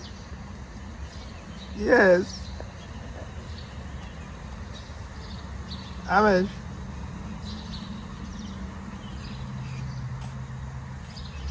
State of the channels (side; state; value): both; identical; correlation 1.00